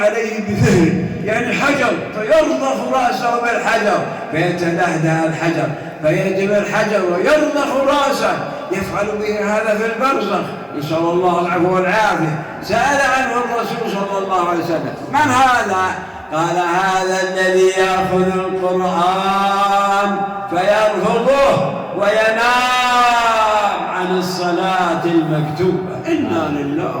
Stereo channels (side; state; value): both; identical; correlation 1.00